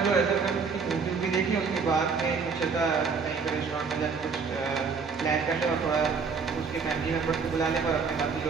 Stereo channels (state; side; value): quieter; left; 5.3 dB